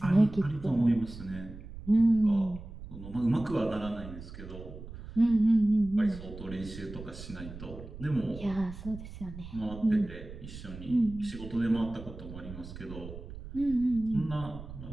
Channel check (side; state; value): right; noise; rumble, 13 dB below the sound